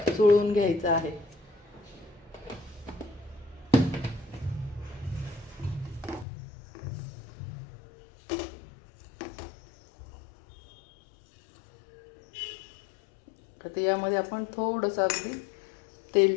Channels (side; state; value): right; drops out; at 6.2 s